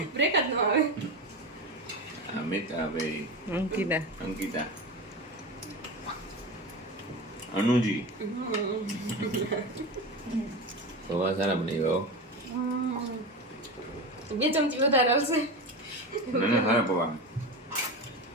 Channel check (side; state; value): both; normal; correlation 0.24